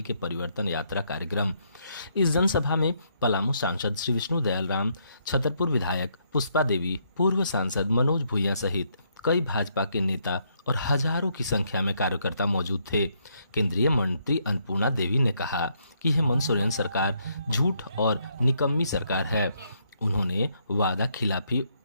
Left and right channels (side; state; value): both; inverted; correlation -0.73